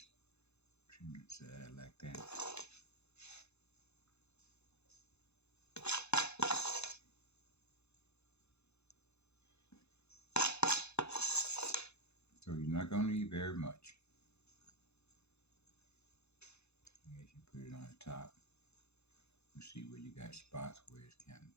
trim the side like that. So you're not going to need very much. As you put it on the top, you see where you got spots where it's kind of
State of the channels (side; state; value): right; late; 0.80 ms